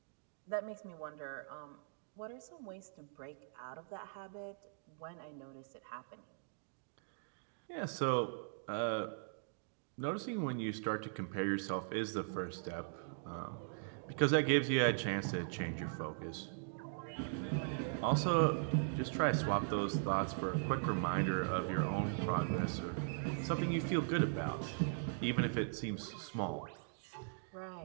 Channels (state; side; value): silent; left; digital silence